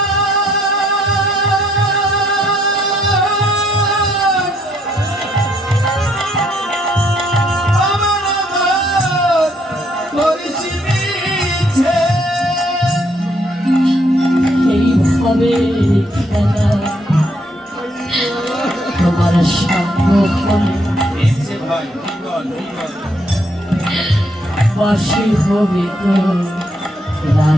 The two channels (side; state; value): both; normal; correlation 0.71